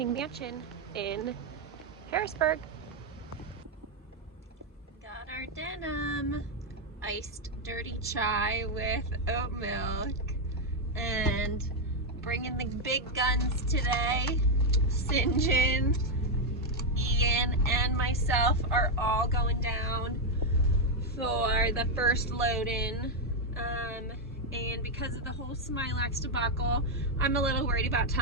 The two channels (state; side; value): normal; both; correlation 0.02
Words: Mansion in Harrisburg. Got our denim. Iced dirty chai with oat milk. And bringing the big guns today. St. John, Ian, and myself are all going down for the first load-in. And because of the whole smilax debacle, I'm a little worried about